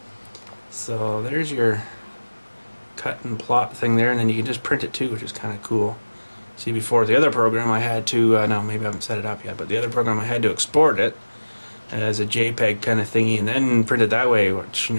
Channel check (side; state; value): both; inverted; correlation -1.00